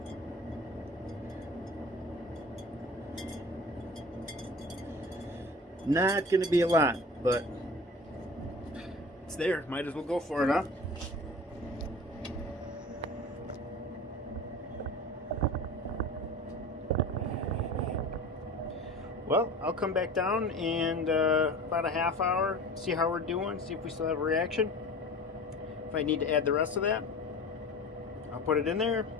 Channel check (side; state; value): both; normal; correlation 0.37